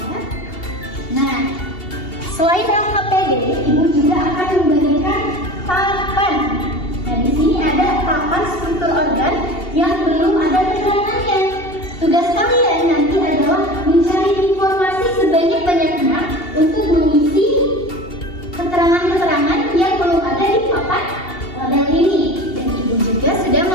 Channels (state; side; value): late; right; 2.8 ms